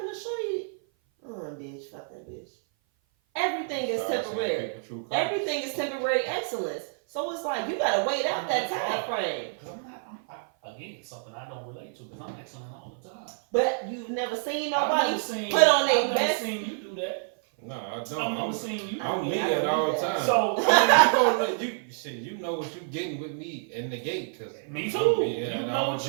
to Shorty? Bitch, fuck that bitch. Everything is temporary. Everything is temporary excellence. So it's like, you gotta wait out that time frame. Again, something I don't relate to because I'm excellent all the time. But you've never seen nobody put on their best. I've never seen you do that. No, I don't. I've never seen you. I'm me at all the time. So you know what you're getting with me in the gate. Cause me too. You know what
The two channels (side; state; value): left; silent; 56 dB below the other